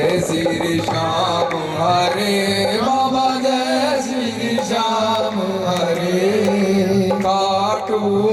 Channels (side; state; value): both; identical; correlation 1.00